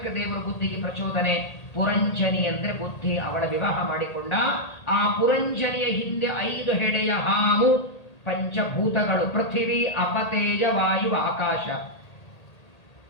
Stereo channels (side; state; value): right; late; 1.8 ms